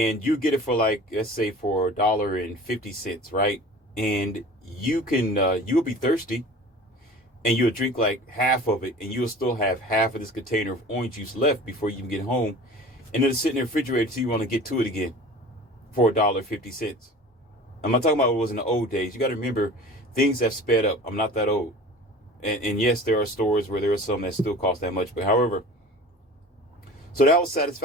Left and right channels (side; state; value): both; normal; correlation 0.41